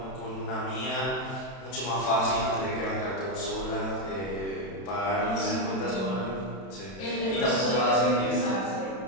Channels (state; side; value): late; right; 31 ms